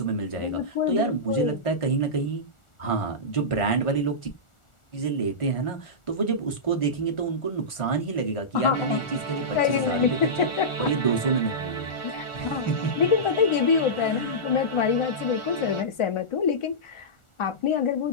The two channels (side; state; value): right; late; 1.4 ms